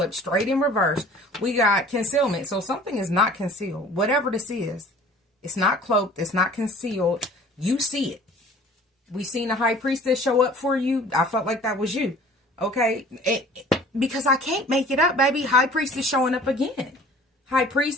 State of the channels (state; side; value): normal; both; correlation 0.48